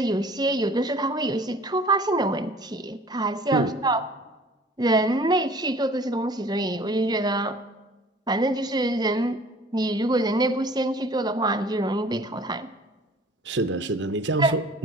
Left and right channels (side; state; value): both; normal; correlation 0.49